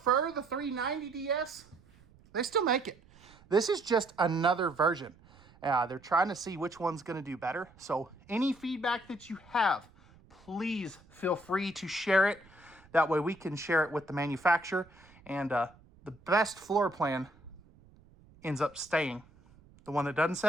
the 390DS, they still make it. This is just another version. They're trying to see which one's going to do better. So any feedback that you have, please feel free to share it. That way we can share it with the manufacturer. And the best floor plan ends up staying. The one that doesn't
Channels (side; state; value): right; noise; rumble, 26 dB below the sound